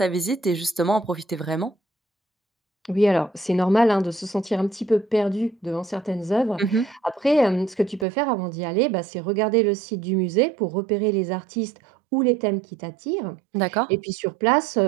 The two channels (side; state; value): left; drops out; at 8.1 s